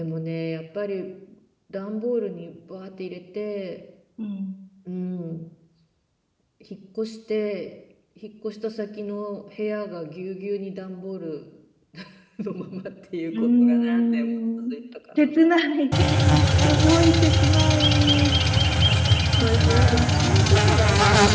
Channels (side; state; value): both; identical; correlation 1.00